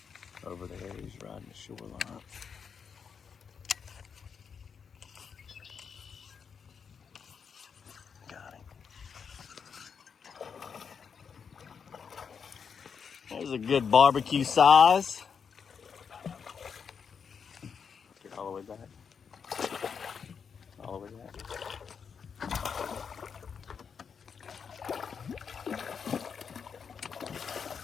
Over there, he's riding the shoreline. Got him. There's a good barbecue size. Get all the way back. All the way back.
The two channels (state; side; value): quieter; right; 6.5 dB